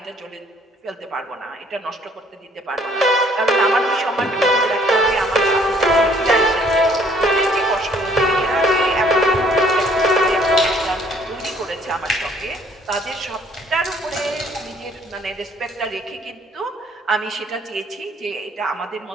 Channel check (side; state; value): both; normal; correlation 0.61